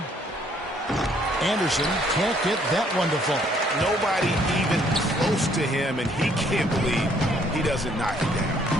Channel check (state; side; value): normal; both; correlation 0.65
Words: Anderson can't get that one to fall. Nobody even close to him, and he can't believe he doesn't knock it down.